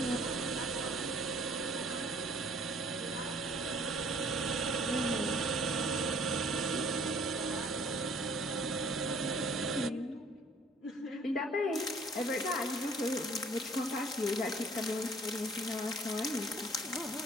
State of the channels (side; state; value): both; normal; correlation 0.56